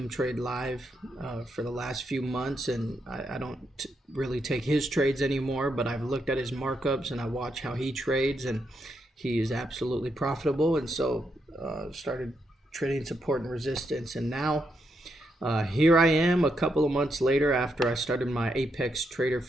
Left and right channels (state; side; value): normal; both; correlation 0.80